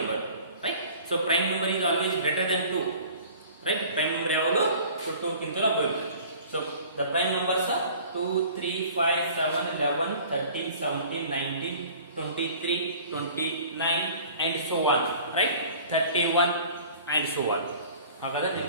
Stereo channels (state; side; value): inverted; both; correlation -0.47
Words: right? So prime number is always greater than 2, right? Prime number ಯಾವಾಗಲೂ 2 ಗಿಂತ ಬರುತ್ತೆ. So the prime numbers are 2, 3, 5, 7, 11, 13, 17, 19, 23, 29 and so on, right? 31 and so on. ಹಾಗಾದ್ರೆ